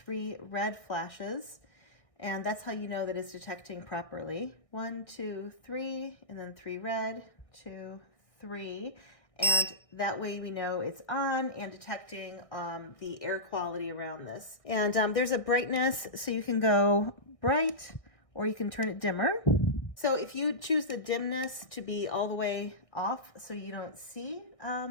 red flashes, and that's how you know that it's detecting properly. 1, 2, 3, and then 3 red, 2, 3, and that way we know it's on and detecting the air quality around this. And there's a brightness, so you can go bright or you can turn it dimmer. So if you choose the dimness to be all the way off so you don't see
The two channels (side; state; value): right; late; 1.6 ms